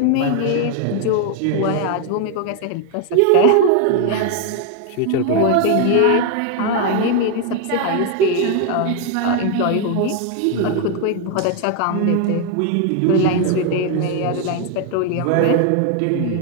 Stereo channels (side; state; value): both; different; correlation 0.01